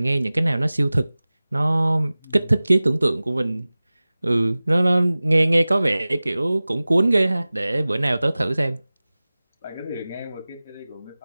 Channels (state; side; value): inverted; both; correlation -0.98